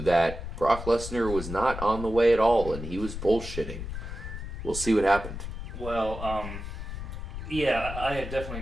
that Brock Lesnar was not on the way at all, and he was bullshitting. We'll see what happened. Well, yeah, I definitely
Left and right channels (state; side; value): noise; left; rumble, 8 dB below the sound